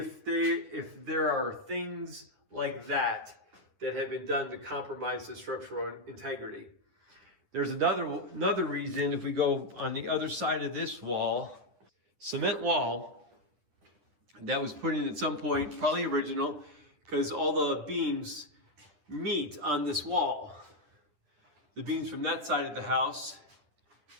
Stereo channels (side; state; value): left; late; 10 ms